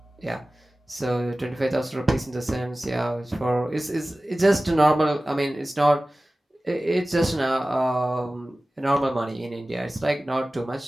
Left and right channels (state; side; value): normal; both; correlation 0.97